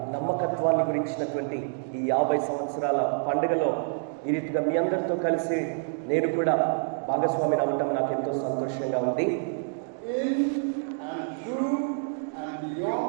నమ్మకత్వాన్ని గురించినటువంటి ఈ 50 సంవత్సరాల పండుగలో ఈ రీతిగా మీ అందరితో కలిసి నేను కూడా భాగస్వామిని అవ్వటం నాకు ఎంతో సంతోషంగా ఉంది. In and through and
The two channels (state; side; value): silent; left; digital silence